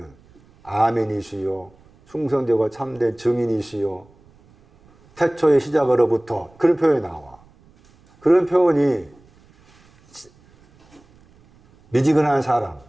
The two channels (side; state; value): right; noise; rumble, 30 dB below the sound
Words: 아멘이시요 충성되고 참된 증인이시요 태초의 시작으로부터 그런 표현이 나와. 그런 표현이 미지근한 사람,